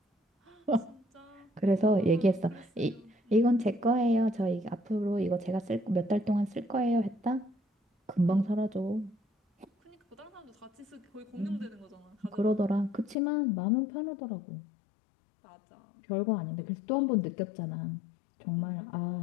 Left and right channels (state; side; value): drops out; right; at 13.2 s